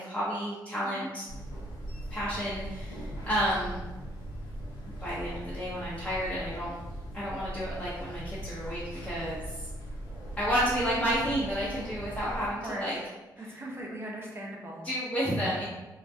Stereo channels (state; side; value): normal; both; correlation 0.61